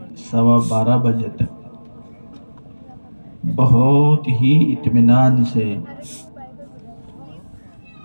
12:15 بجے تک بہت ہی اطمینان سے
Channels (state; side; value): inverted; both; correlation -1.00